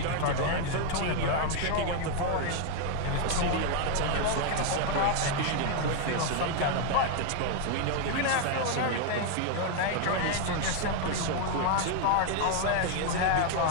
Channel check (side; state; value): both; different; correlation 0.01